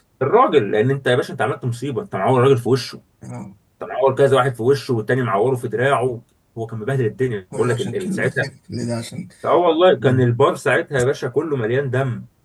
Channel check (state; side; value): identical; both; correlation 1.00